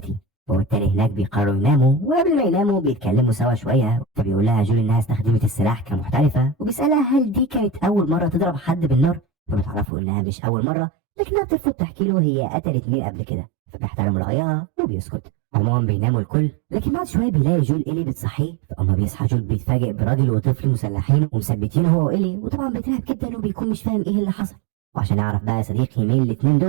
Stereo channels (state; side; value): drops out; left; at 9.9 s